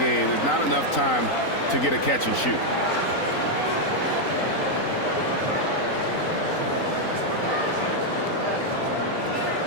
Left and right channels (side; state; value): right; late; 3.9 ms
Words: There's not enough time to get a catch and shoot.